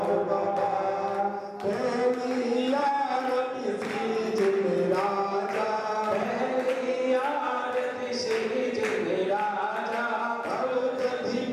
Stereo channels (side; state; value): both; identical; correlation 1.00